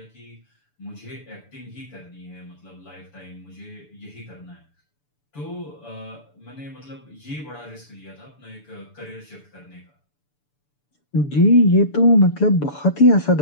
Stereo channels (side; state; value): right; late; 6.9 ms